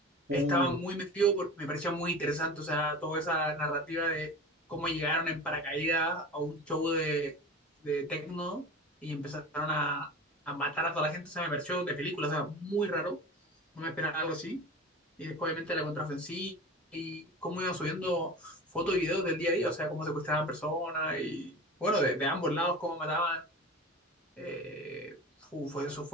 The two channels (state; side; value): normal; both; correlation 0.33